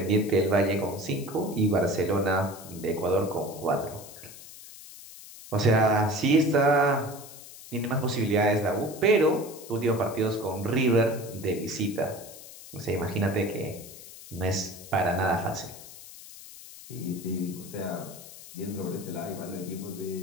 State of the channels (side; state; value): left; noise; hiss, 16 dB below the sound